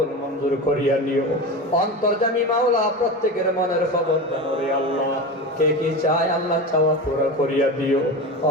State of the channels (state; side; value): normal; both; correlation 0.25